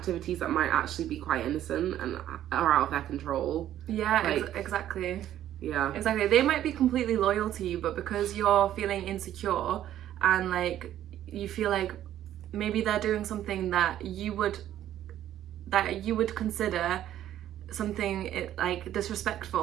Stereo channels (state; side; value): quieter; left; 11.9 dB